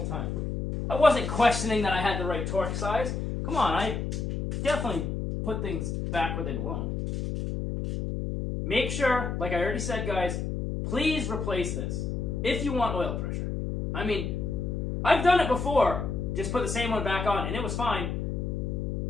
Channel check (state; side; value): noise; left; hum, 2 dB below the sound